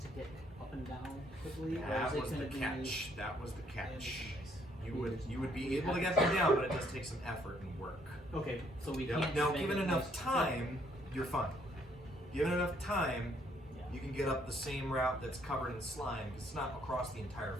to get up and down quickly? Or That is it was the gonna be- catch. That was the catch. You would be able to get them down, but it does take some effort and work. Okay, so we Yep. can't. Now, just make given it enough nice- time, you're fine. Given enough time, Yeah. you can get up the same route that's covered in slime because it's not across the entire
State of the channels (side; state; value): both; normal; correlation 0.68